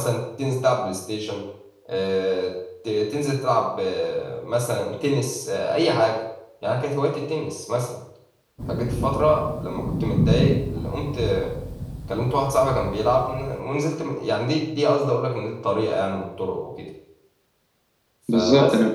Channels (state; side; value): identical; both; correlation 1.00